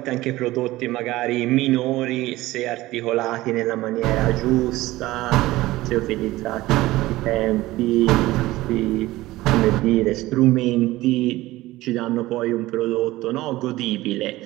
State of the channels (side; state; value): left; quieter; 17.8 dB